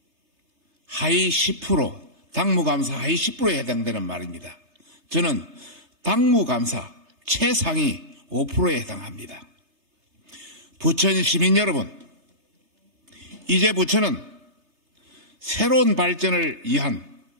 하위 10%, 당무감사 하위 10%에 해당되는 말입니다. 저는 당무감사 최상위 5%에 해당합니다. 부천 시민 여러분, 이제 부천은 새로운 발전을 위한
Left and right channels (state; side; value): late; left; 3.3 ms